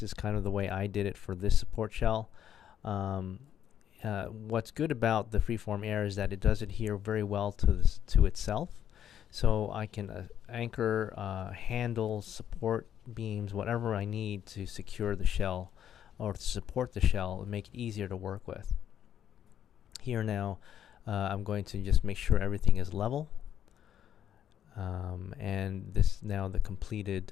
is kind of the way I did it for this support shell. What's good about the freeform air is that it does adhere very well to itself. So I can anchor, handles, support beams, whatever I need to secure the shell or to support the shell and make it easier to work with. Here now, I'm going to just make sure everything is level. And this is now the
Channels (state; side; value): quieter; right; 9.9 dB